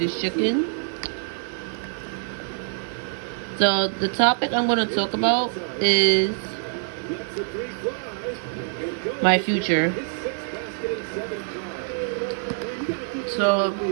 chicken. So the topic I'm gonna talk about is my future. So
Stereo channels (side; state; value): left; silent; digital silence